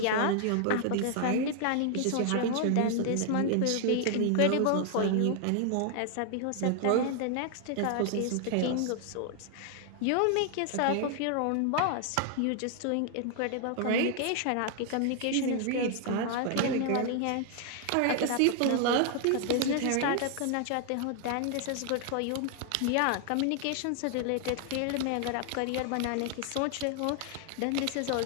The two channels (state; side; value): different; both; correlation 0.00